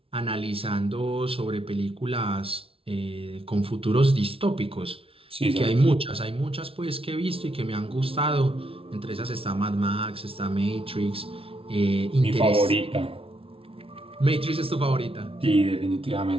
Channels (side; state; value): left; late; 0.26 ms